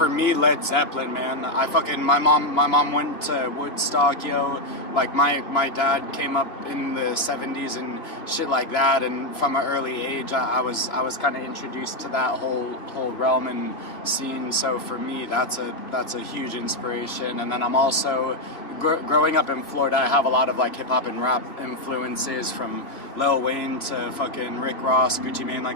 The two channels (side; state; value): right; late; 3.3 ms